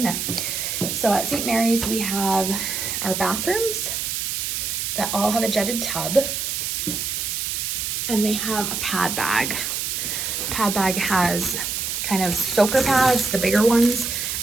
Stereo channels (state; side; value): noise; right; hiss, 2 dB below the sound